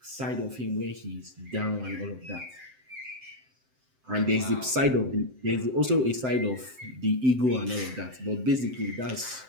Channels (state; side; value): late; left; 7.8 ms